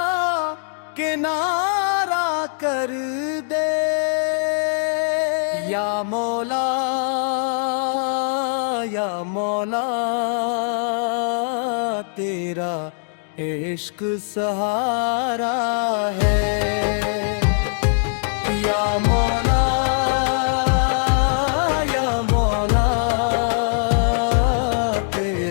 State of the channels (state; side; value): silent; right; digital silence